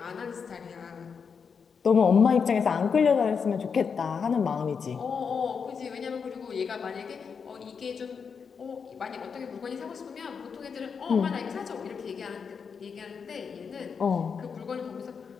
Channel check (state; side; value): quieter; right; 6.1 dB